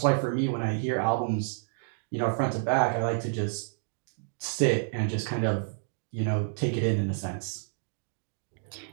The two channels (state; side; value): silent; left; digital silence